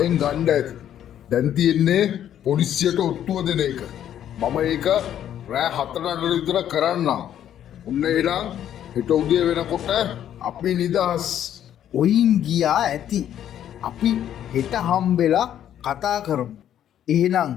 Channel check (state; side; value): quieter; right; 10.6 dB